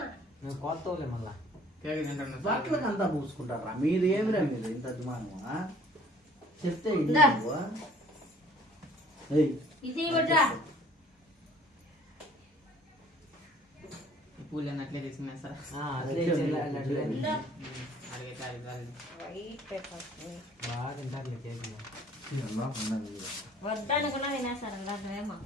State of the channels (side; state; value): both; normal; correlation 0.55